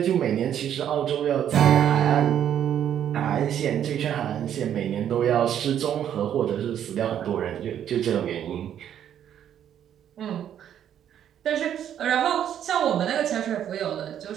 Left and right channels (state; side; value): quieter; left; 9.9 dB